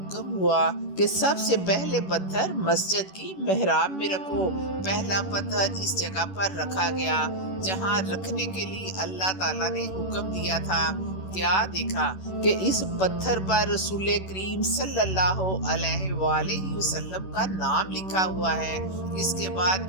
ہوا کہ سب سے پہلے پتھر مسجد کی محراب میں رکھو۔ پہلا پتھر اس جگہ پر رکھا گیا جہاں رکھنے کے لیے اللہ تعالیٰ نے حکم دیا تھا۔ کیا دیکھا کہ اس پتھر پر رسول کریم صلی اللہ علیہ وآلہ وسلم کا نام لکھا ہوا ہے۔ اس کے بعد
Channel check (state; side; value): late; right; 11 ms